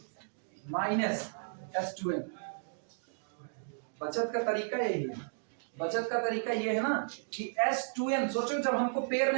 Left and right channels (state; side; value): silent; left; digital silence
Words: minus S2n। बचत का तरीका यही है, बचत का तरीका ये है ना कि S2n, सोचो जब हमको पेयर